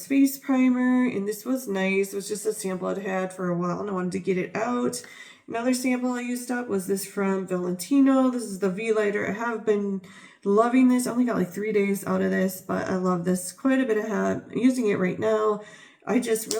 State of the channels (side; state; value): both; identical; correlation 1.00